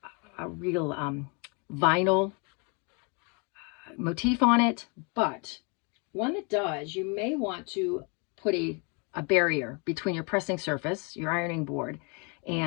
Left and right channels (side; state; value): right; quieter; 33.8 dB